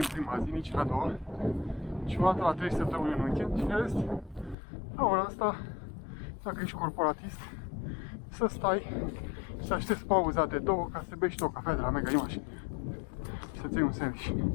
prima zi, nici în a doua, și o dată la 3 săptămâni în weekend, și în rest, la ora asta, dacă ești corporatist, să stai și să aștepți pauza de 2 ca să bei și tu o cafea de la Mega Image și să-ți iei un sandwich.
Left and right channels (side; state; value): right; drops out; at 4.5 s